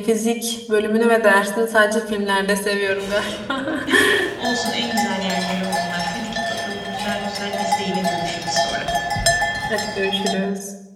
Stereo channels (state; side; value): identical; both; correlation 1.00